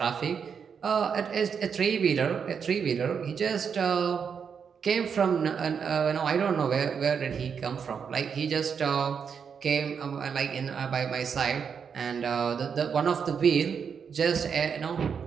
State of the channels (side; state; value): left; quieter; 6.7 dB